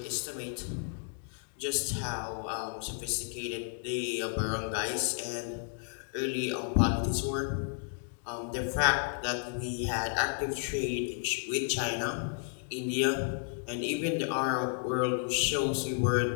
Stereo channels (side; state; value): right; silent; 56 dB below the other